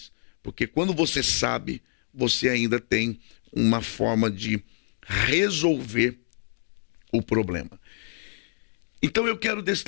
Porque quando você sabe, você ainda tem uma forma de resolver o problema. Então eu quero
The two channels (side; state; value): right; silent; digital silence